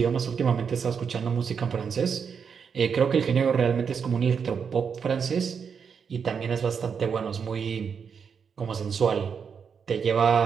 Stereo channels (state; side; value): quieter; left; 6.5 dB